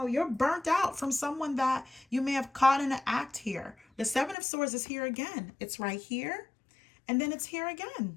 you're burnt out from someone that you may have caught in an act here. The Seven of Swords is here again. It's right here, and then it's here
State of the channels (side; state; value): right; drops out; at 4.4 s